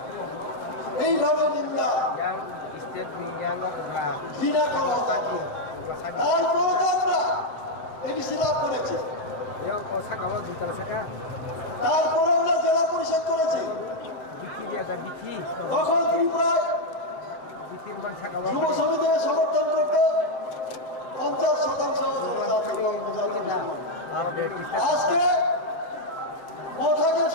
এইভাবে নিন্দা ঘৃণা করা তারপরে তো আমরা এডিসি লাভ করেছি। তারপরে আমরা জেলা পরিষদ করেছি। তখন ত্রিপুরায় যুব সমিতিকে সমর্থন করতে 50% আজকে মথাকে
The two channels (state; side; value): late; right; 7.8 ms